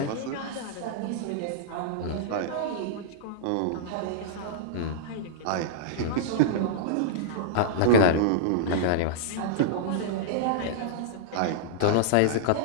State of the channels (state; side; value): different; both; correlation -0.02